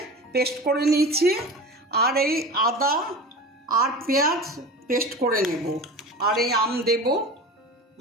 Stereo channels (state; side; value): normal; both; correlation 0.33